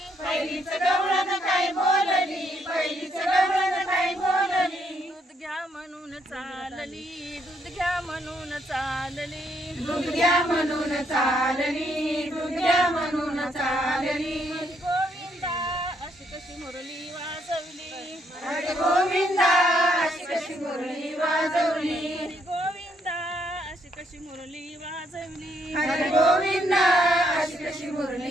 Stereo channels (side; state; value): both; normal; correlation 0.73